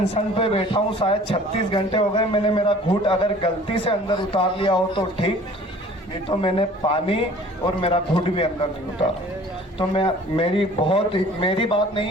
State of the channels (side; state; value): both; normal; correlation 0.49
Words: पे बैठा हूँ शायद 36 घंटे हो गए। मैंने मेरा घूंट अगर गलती से अंदर उतार लिया हो तो ठीक, नहीं तो मैंने पानी और मेरा घूंट भी अंदर नहीं उतारा। तो मेरी बात